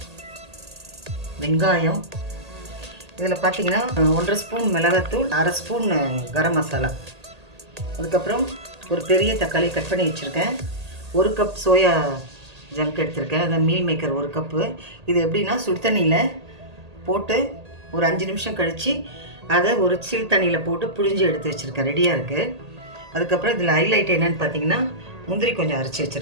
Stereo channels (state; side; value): late; left; 1.8 ms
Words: வெங்காயம். இதில் பார்த்தீங்கன்னா 1.5 ஸ்பூன் மிளகாத்தூள், 1/2 ஸ்பூன் கரம் மசாலா. அதுக்கப்புறம் ஒரு பெரிய தக்காளி கட் பண்ணி வச்சுருக்கேன். 1 கப் சோயா ஜங்க் எடுத்திருக்கேன், அதை மீல் மேக்கர் 1 கப்பு. இது எப்படின்னா, சுடு தண்ணியில் போட்டு ஒரு 5 நிமிஷம் கழித்து அதை ஒரு சில் தண்ணியில் போட்டு புழிஞ்சு எடுத்து வச்சுருக்கேன், ரெடியாக இருக்குது. அதுக்கப்புறம் இதில் ஹைலைட் என்னென்னு பார்த்தீங்கன்னா, முந்திரி கொஞ்சம் அரைச்சி